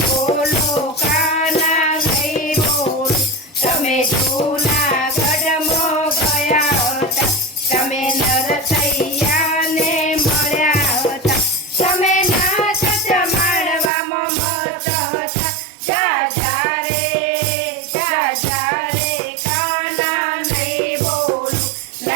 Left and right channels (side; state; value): left; drops out; at 13.9 s